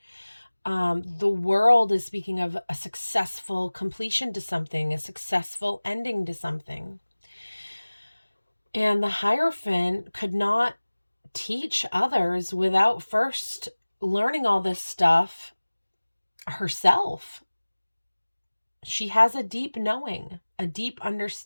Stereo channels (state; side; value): inverted; both; correlation -1.00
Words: The World is speaking of a successful completion to something, a successful ending to something. And the Hierophant could not teach others without first learning all this stuff herself. She has a deep knowing, a deep